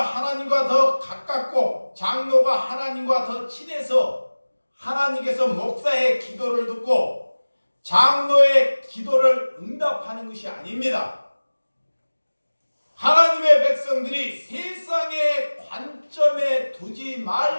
하나님과 더 가깝고 장로가 하나님과 더 친해서 하나님께서 목사의 기도를 듣고 장로의 기도를 응답하는 것이 아닙니다. 하나님의 백성들이 세상의 관점에 두지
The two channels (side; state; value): both; inverted; correlation -1.00